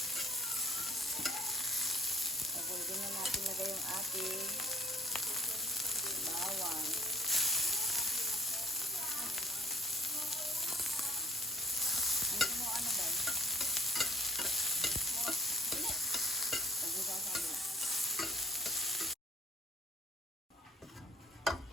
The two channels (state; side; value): normal; both; correlation 0.58